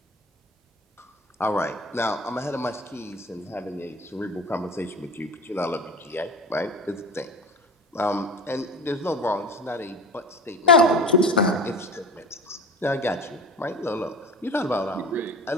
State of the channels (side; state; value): both; normal; correlation 0.34